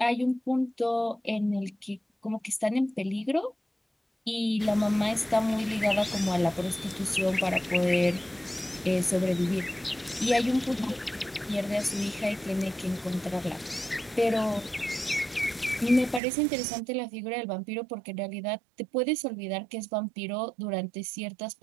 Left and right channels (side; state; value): left; drops out; at 16.2 s